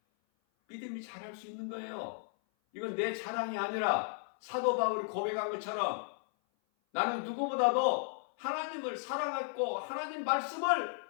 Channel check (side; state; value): right; silent; 55 dB below the other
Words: 믿음이 자랄 수 있는 거예요. 이건 내 자랑이 아니라 사도 바울이 고백한 것처럼 나는 누구보다도 하나님을 사랑했고 하나님 말씀을